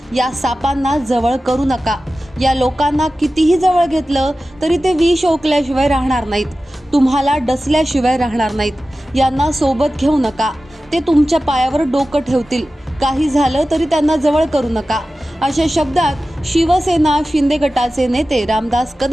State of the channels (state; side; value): normal; both; correlation 0.95